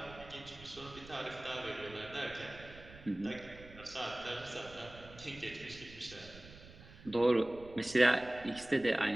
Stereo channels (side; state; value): right; noise; rumble, 18 dB below the sound